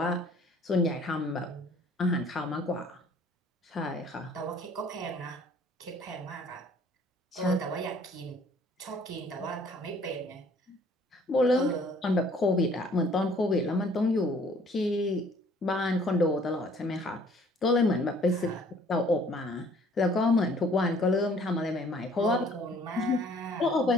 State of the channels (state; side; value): normal; both; correlation 0.57